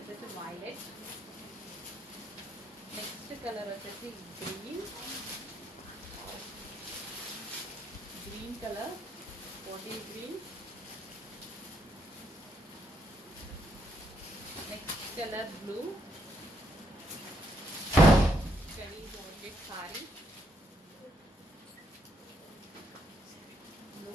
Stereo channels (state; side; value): normal; both; correlation 0.74